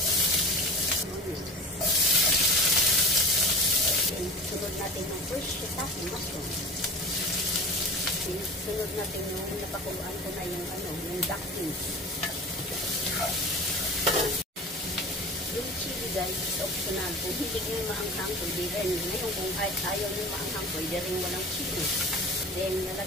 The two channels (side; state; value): both; normal; correlation 0.34